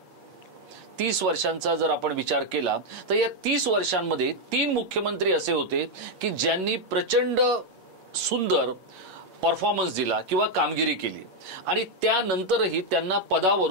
30 वर्षांचा जर आपण विचार केला तर या 30 वर्षांमध्ये 3 मुख्यमंत्री असे होते की ज्यांनी प्रचंड सुंदर परफॉर्मन्स दिला किंवा कामगिरी केली आणि त्यानंतरही त्यांना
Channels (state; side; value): late; left; 8.5 ms